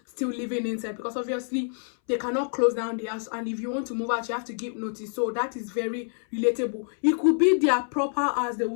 still living inside, because obviously they cannot close down the house, and if you want to move out, you have to give notice. So that is very relatable. It could be their proper house. They will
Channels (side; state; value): right; silent; 60 dB below the other